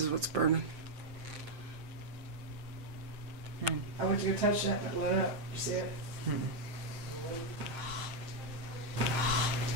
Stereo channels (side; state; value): left; late; 7.6 ms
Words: what's burning. I went to go touch that and it lit up. You see it?